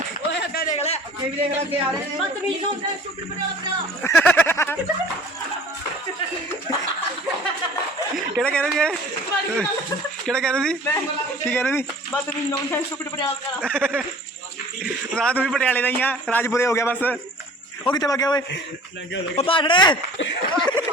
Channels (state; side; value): normal; both; correlation 0.47